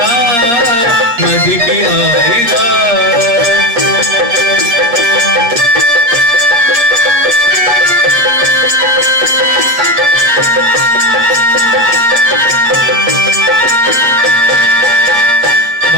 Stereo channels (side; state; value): left; late; 8.5 ms